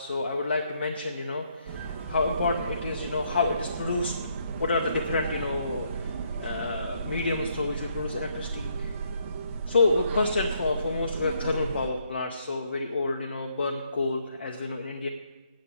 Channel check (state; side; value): inverted; both; correlation -0.73